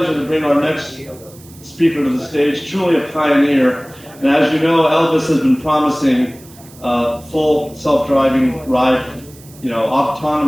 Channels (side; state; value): right; noise; hiss, 23 dB below the sound